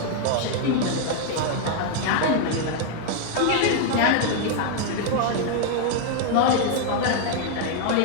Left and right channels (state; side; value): different; both; correlation 0.00